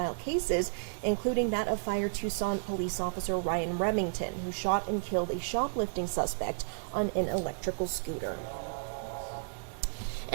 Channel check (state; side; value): silent; left; digital silence